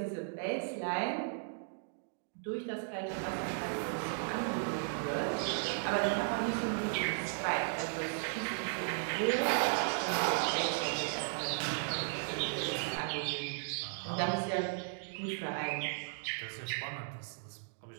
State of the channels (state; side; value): silent; left; digital silence